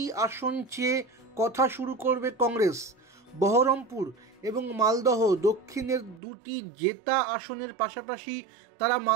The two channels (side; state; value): left; drops out; at 6.2 s